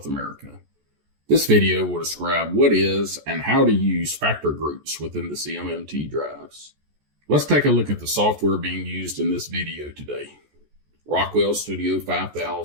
America. This video will describe what is and how to use factor groups within the CMMT drives. Let's take a look at the software being used in this video today. Rockwell Studio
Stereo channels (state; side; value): late; left; 14 ms